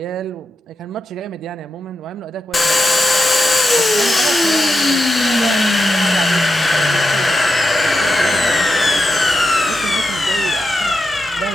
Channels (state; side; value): normal; both; correlation 0.88